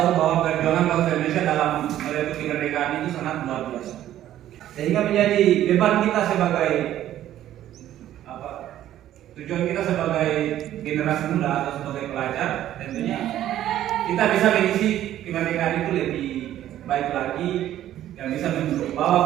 bahwa perjuangan bangsa Indonesia dalam merebut kemerdekaan itu sangat luar biasa. Sehingga menjadi beban kita sebagai tujuan kita sebagai generasi muda atau sebagai pelajar, tentunya kita bisa mengisi kemerdekaan itu lebih baik lagi dan bisa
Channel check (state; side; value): quieter; left; 12.4 dB